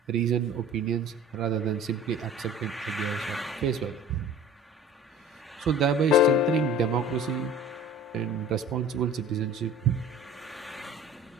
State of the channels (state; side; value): normal; both; correlation 0.43